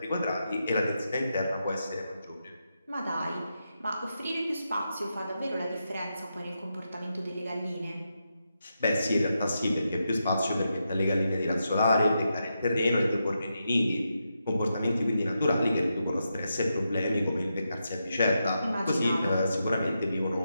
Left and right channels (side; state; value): both; inverted; correlation -0.85